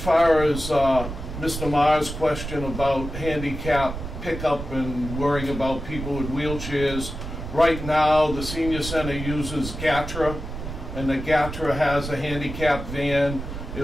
as Mr. Maher's question about handicap pickup and worrying about people with wheelchairs, right now the senior center uses GATRA, and the GATRA has a handicap van.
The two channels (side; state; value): right; noise; rumble, 8 dB below the sound